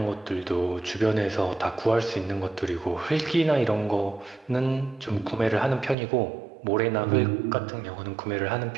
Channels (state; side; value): drops out; left; at 6.0 s